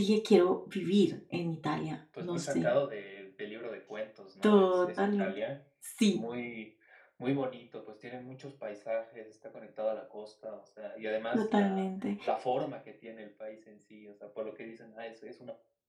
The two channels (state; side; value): identical; both; correlation 1.00